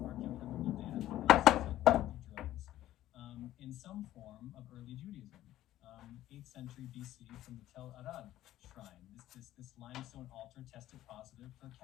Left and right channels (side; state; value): right; quieter; 13.9 dB